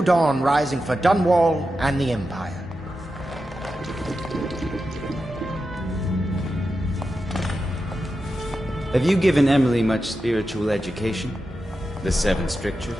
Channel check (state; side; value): normal; both; correlation 0.90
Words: dawn rising for Dunwall and the Empire. Have you given Emily much spiritual education? The Seven